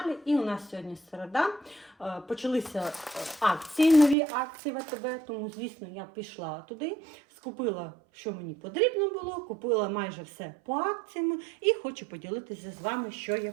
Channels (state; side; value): drops out; left; at 4.2 s